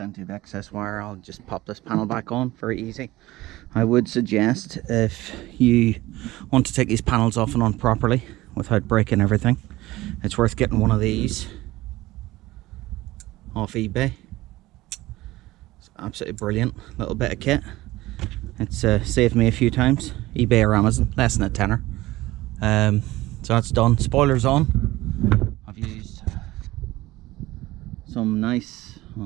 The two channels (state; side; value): quieter; left; 18.1 dB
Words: of excess wire. I'll just pop this panel back on, very easy. I would suggest, if you want to take these panels off and on properly without breaking everything, it's worth getting one of these off eBay. It's absolutely brilliant little bit of kit. It's saved me a few times. eBay or Amazon, less than a tenner. So that's done. Spoiler's on. I've used some nice, I